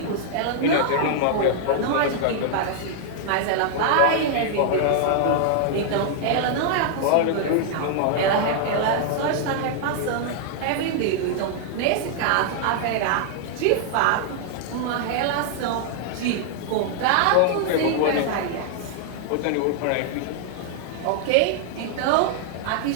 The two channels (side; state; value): both; different; correlation -0.01